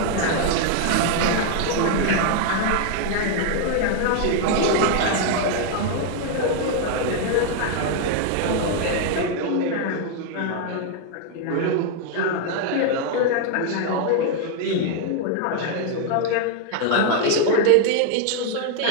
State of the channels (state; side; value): different; both; correlation 0.00